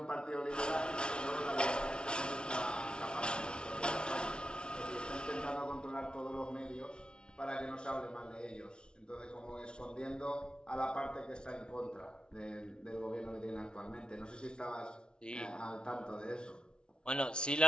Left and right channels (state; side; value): late; right; 0.056 ms